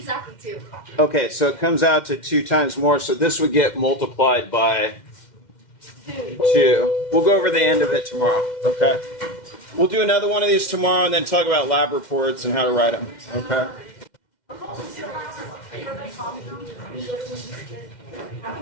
2. Okay, so it comes out to 2 times more, so this would get multiplied by 2. We'll go over the end of it tomorrow, okay? We'll do another one of these tomorrow and then talk about lab reports and how to write them, okay?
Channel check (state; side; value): late; right; 2.1 ms